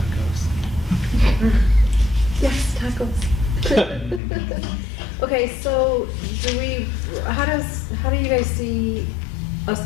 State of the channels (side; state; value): right; drops out; at 4.2 s